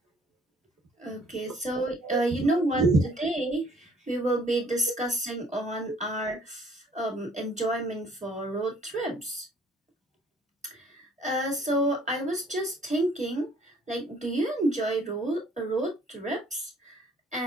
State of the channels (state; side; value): normal; both; correlation 0.59